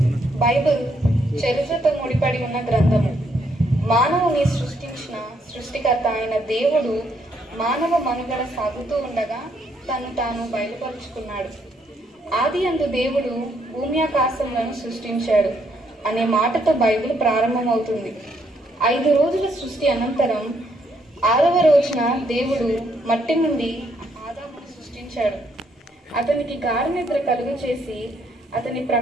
బైబిల్ చరిత్రతో ముడిపడి ఉన్న గ్రంథము. మానవుని సృష్టించిన సృష్టికర్త అయిన దేవుడు మానవ మనుగడ సాగుతూ ఉండగా తను తాను బయలుపరుచుకున్నాడు. ఆది అందు దేవుడు భూమి ఆకాశములను సృష్టించాడు అనే మాటతో బైబిల్ ప్రారంభమవుతుంది. 5 రోజుల సృష్టి అనంతరం 6వ రోజున దేవుడు మట్టి నుండి ఆదామును సృష్టించాడు. అతనికి గాఢ నిద్ర కలుగు చేసి అతని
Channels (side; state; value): both; normal; correlation 0.72